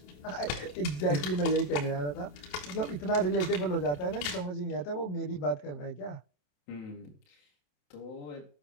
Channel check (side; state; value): right; late; 27 ms